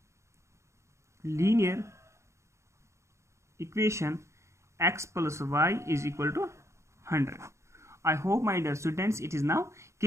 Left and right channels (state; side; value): late; left; 0.14 ms